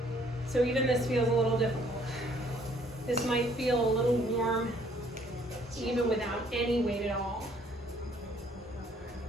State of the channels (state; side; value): normal; both; correlation 0.62